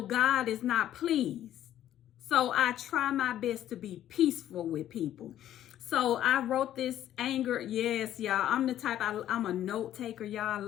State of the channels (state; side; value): quieter; right; 11.9 dB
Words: God is not pleased. So I try my best to be peaceful with people. So I wrote this anger. Yes, y'all. I'm the type, I'm a note taker, y'all.